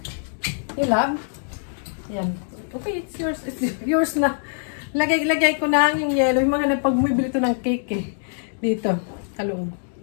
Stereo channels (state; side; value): silent; right; digital silence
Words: ilab. Yan. Okay, it's yours. It's yours na. Lagay ko na yung yellow. Yung mga nagpag-bumibili ito ng cake eh. Dito. Talong.